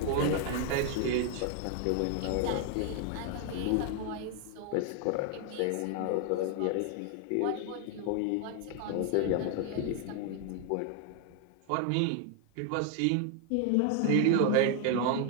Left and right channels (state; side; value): different; both; correlation 0.00